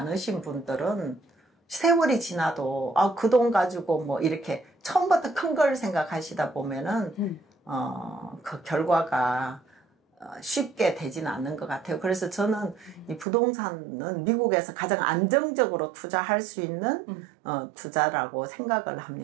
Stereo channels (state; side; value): drops out; left; at 13.2 s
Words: 분들은 세월이 지나도 그 돈 가지고 뭐 이렇게 처음부터 큰 걸 생각하시다 보면은 그 결과가 쉽게 되지는 않는 것 같아요. 그래서 저는 이 부동산은 미국에서 가장 안정적으로 투자할 수 있는 투자라고 생각을